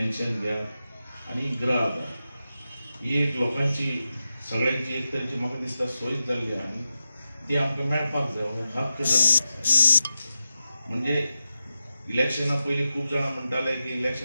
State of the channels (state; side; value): inverted; both; correlation -0.91